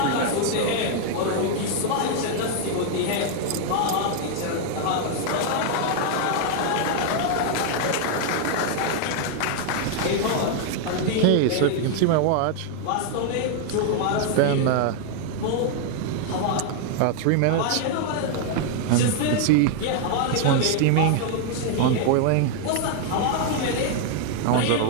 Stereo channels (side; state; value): both; different; correlation 0.00